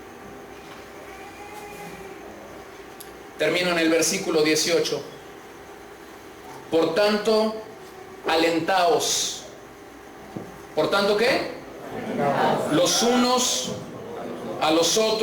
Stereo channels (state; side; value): identical; both; correlation 1.00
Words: Termino en el versículo 18. Por tanto, alentaos. ¿Por tanto qué? Los unos a los